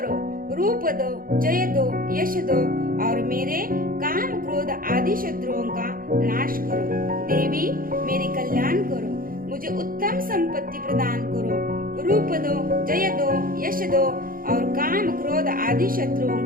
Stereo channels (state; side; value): late; left; 0.41 ms